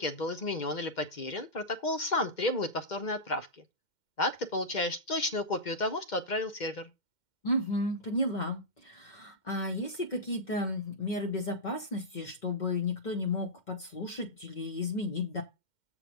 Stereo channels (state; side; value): late; right; 2.1 ms